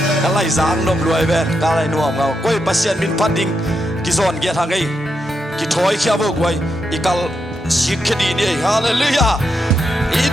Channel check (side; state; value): both; normal; correlation 0.84